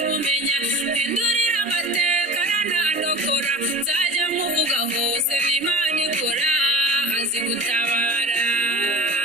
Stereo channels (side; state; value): both; normal; correlation 0.35